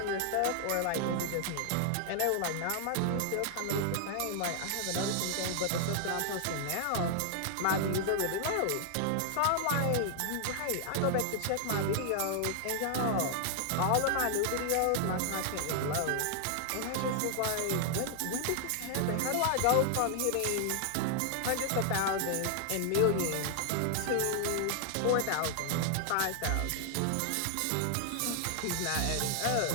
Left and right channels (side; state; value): both; different; correlation 0.00